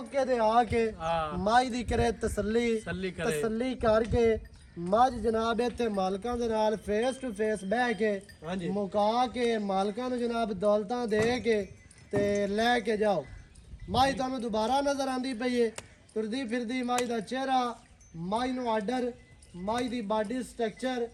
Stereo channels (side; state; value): both; identical; correlation 1.00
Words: ਤੇ ਆ ਕੇ ਹਾਂ ਮੱਝ ਦੀ ਕਰੇ ਤਸੱਲੀ ਸੱਲੀ ਕਰੇ ਤਸੱਲੀ ਕਰਕੇ ਮੱਝ ਜਨਾਬ ਇੱਥੇ ਮਾਲਕਾਂ ਦੇ ਨਾਲ ਫੇਸ ਟੂ ਫੇਸ ਬਹਿ ਕੇ ਹਾਂਜੀ ਮੁਕਾ ਕੇ ਮਾਲਕਾਂ ਨੂੰ ਜਨਾਬ ਦੌਲਤਾਂ ਦੇ ਕੇ ਤੇ ਲੈ ਕੇ ਜਾਓ ਮੱਝ ਤੁਹਾਨੂੰ ਦੁਬਾਰਾ ਨਜ਼ਰ ਆਂਦੀ ਪਈ ਏ ਤੁਰਦੀ ਫਿਰਦੀ ਮੱਝ ਦਾ ਚਿਹਰਾ ਮੱਝ ਨੂੰ ਆਰਡਰ ਮੱਝ ਦੀ ਬਾਡੀ ਸਟਰਕਚਰ